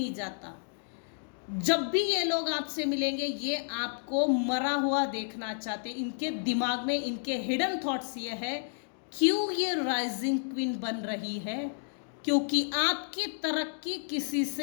जाता? जब भी ये लोग आपसे मिलेंगे, ये आपको मरा हुआ देखना चाहते। इनके दिमाग में, इनके हिडन थॉट्स ये है, क्यों ये राइजिंग क्वीन बन रही है? क्योंकि आपकी तरक्की किसी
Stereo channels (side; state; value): right; silent; digital silence